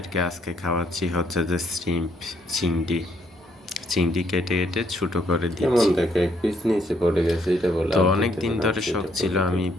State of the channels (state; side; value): normal; both; correlation 0.71